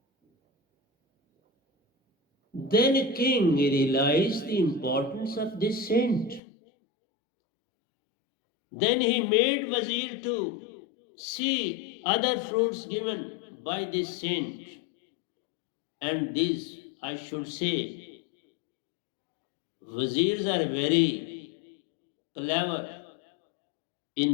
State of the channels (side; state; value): right; drops out; at 6.4 s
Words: Then a king realized the importance of this saint. Then he made wazir to see other fruits given by this saint. And these, I should say, wazirs are very clever